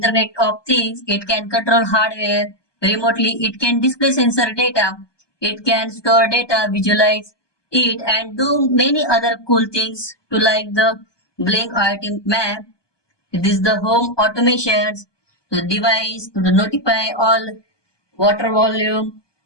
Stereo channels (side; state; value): right; late; 1.2 ms